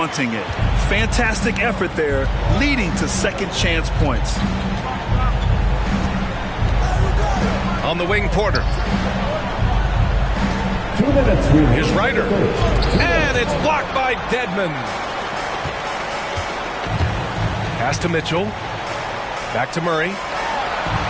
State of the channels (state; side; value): identical; both; correlation 1.00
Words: it. Fantastic effort there, leading to second chance points. On the wing, Porter. 2 minutes. Here's Ryder. And it's blocked by Dedmon. Pass to Mitchell. Back to Murray.